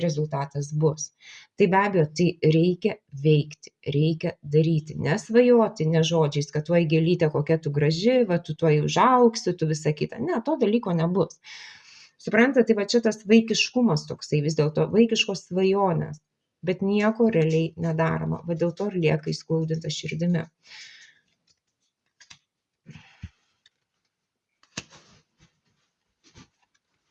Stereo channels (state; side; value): identical; both; correlation 1.00